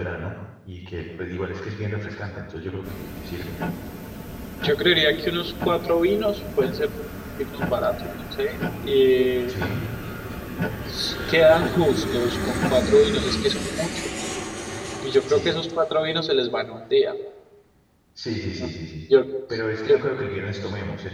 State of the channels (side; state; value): both; identical; correlation 1.00